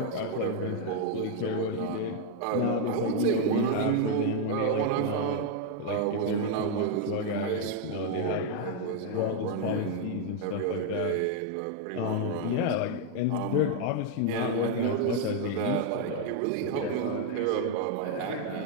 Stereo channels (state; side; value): different; both; correlation 0.00